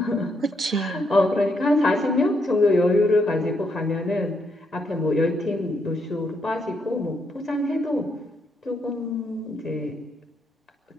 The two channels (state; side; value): normal; both; correlation 0.77